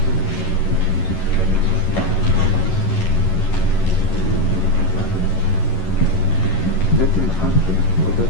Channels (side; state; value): right; late; 11 ms